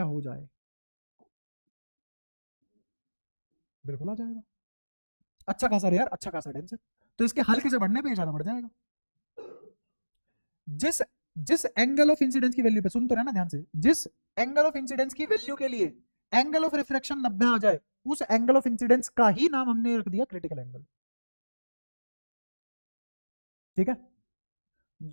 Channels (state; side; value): inverted; both; correlation -1.00